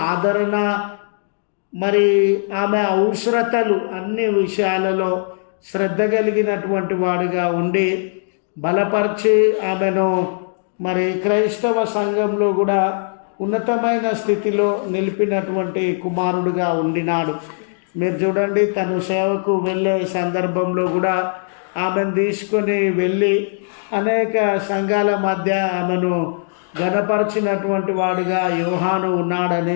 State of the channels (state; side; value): silent; right; digital silence